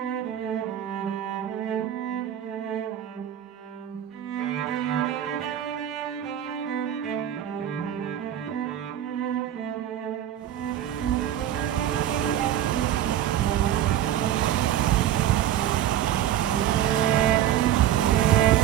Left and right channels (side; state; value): left; quieter; 11.2 dB